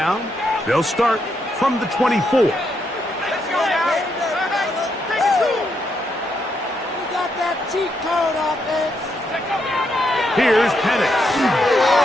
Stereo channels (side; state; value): both; normal; correlation 0.79